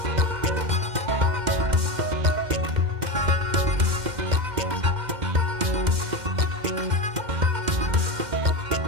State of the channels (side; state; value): left; late; 2.1 ms